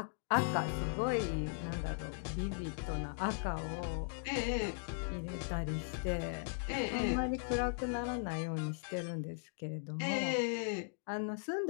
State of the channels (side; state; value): right; silent; digital silence